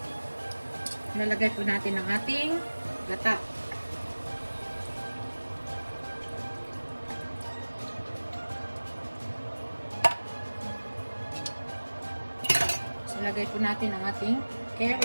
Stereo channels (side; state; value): both; inverted; correlation -1.00